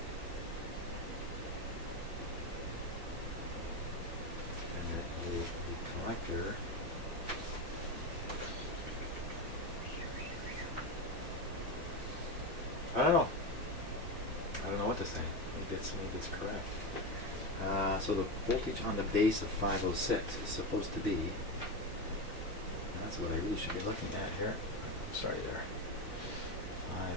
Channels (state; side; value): normal; both; correlation 0.16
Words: The collector I don't know what to say. Maybe it's correct. So the voltage on the base of 506 is supposed to be, that's what I really should be looking at here. I'm sorry there.